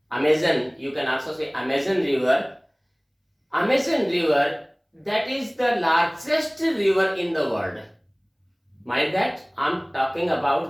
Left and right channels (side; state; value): both; identical; correlation 1.00